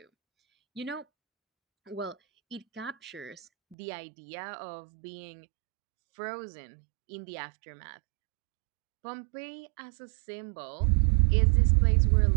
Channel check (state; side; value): drops out; left; at 3.8 s